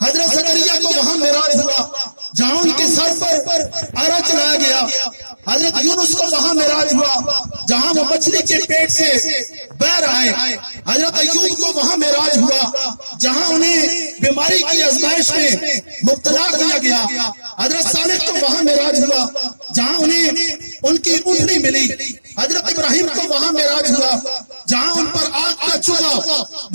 حضرت زکریا کو وہاں معراج ہوا جہاں ان کے سر پر آرا چلایا گیا، حضرت یونس کو وہاں معراج ہوا جہاں وہ مچھلی کے پیٹ سے بہر آئے، حضرت ایوب کو وہاں معراج ہوا جہاں انہیں بیماری کی آزمائش میں مبتلا کیا گیا، حضرت صالح کو وہاں معراج ہوا جہاں انہیں ان کی اونٹنی ملی، حضرت ابراہیم کو وہاں معراج ہوا جہاں ان پر آگ کا چولہا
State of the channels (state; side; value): inverted; both; correlation -1.00